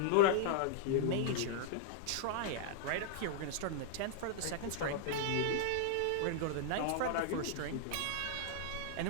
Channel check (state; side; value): different; both; correlation -0.01